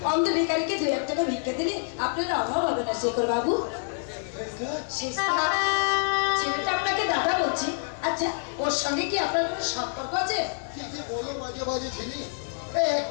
অন্ধ ভিখারিকে 2-1 টাকা ভিক্ষা দিলে আপনার অভাব হবে না শেখর বাবু। ছেলেটা আপনাকে দাদা বলছি। আচ্ছা, ওর সঙ্গে কি আপনার কোনো সম্পর্ক আছে? কি বলো মাঝে মাঝে ছিলি?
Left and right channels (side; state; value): right; silent; 60 dB below the other